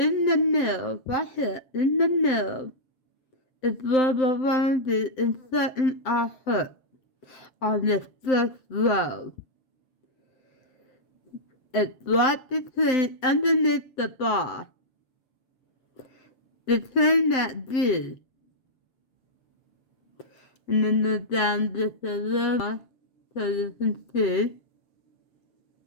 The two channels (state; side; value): late; right; 7.7 ms